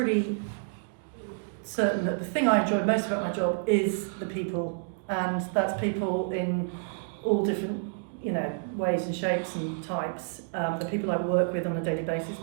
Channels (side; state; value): left; silent; digital silence